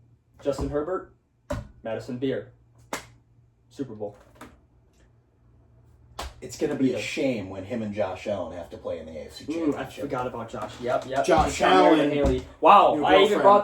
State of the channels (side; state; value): both; identical; correlation 1.00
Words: Justin Herbert, Madison Beer. Super Bowl. It's going to be a shame when him and Josh Allen have to play in the AFC Championship. I forgot about Josh. Yep. Josh Allen and Haley. Wow, I even brought